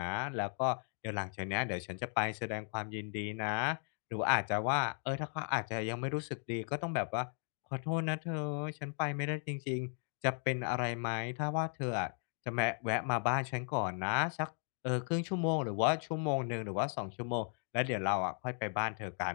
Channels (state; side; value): silent; right; 54 dB below the other